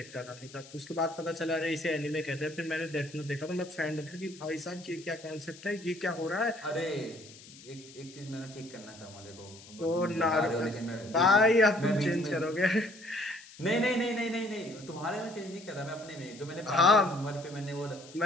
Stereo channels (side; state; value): left; noise; hiss, 19 dB below the sound